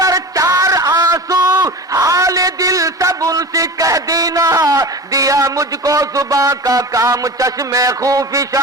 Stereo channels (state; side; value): normal; both; correlation 0.32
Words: 4 آنسو حال دل سب ان سے کہہ دینا، دیا مجھ کو زباں کا کام چشم